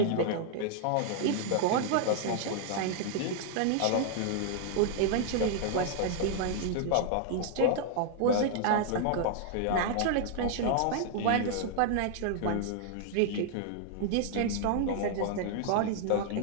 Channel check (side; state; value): both; different; correlation 0.00